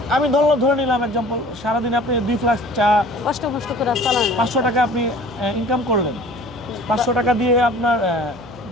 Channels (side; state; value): right; noise; hum, 22 dB below the sound